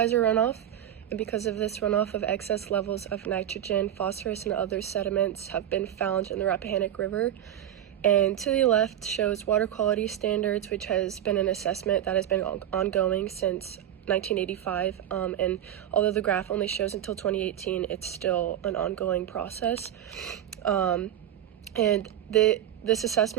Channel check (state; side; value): quieter; left; 11.3 dB